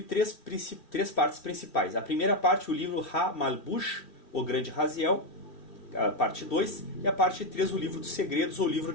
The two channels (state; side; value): late; right; 2.4 ms